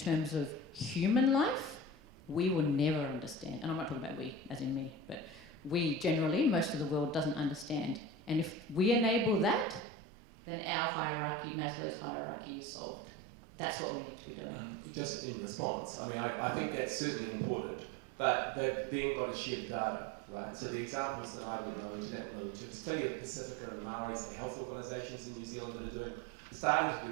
of human life, we will never understand. And I'm not talking about we, as in me, but we generally, most of the world doesn't understand. And if we enable that, then our hierarchy, Maslow's hierarchy, is solved. That's what we need to be doing. Just in response, I mean, I think that's certainly important, but they've then got to share the data, right? So the examples that I would know, and Jannat will know them too, there's plenty of Pacifica and Maori, say, health organisations in New Zealand that are starting to do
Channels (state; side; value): drops out; left; at 9.8 s